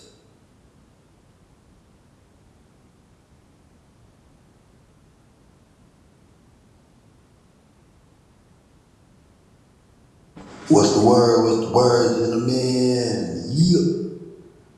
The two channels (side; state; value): both; identical; correlation 1.00